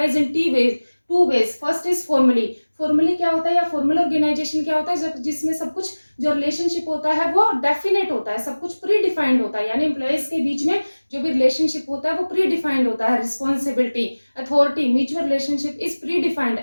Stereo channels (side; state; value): both; inverted; correlation -1.00